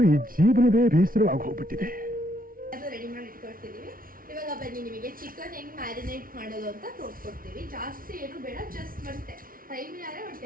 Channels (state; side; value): late; left; 0.42 ms